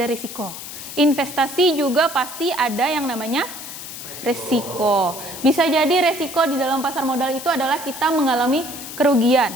risiko. Investasi juga pasti ada yang namanya resiko. Bisa jadi resiko di dalam pasar modal itu adalah kita mengalami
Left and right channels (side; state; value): left; noise; hiss, 11 dB below the sound